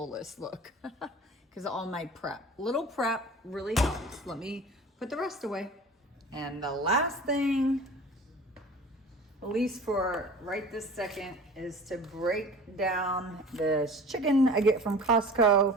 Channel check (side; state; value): both; normal; correlation 0.41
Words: look because of all my prep. Little prep really helps. Let me put the rest away. And the last thing, at least for right this second, is to break down this chicken I get from